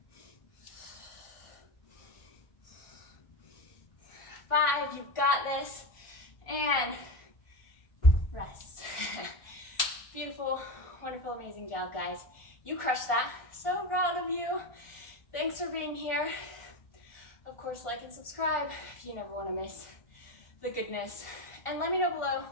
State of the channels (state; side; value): late; right; 1.5 ms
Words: Five, you've got this. And rest. Beautiful, wonderful, amazing job, guys. You crushed that. So proud of you. Thanks for being here. Of course, like and subscribe if you never want to miss the goodness. And let me know below